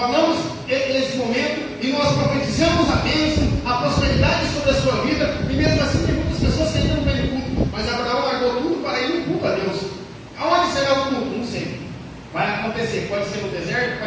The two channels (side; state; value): both; identical; correlation 1.00